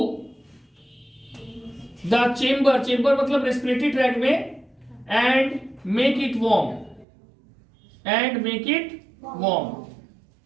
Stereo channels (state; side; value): drops out; left; at 7.1 s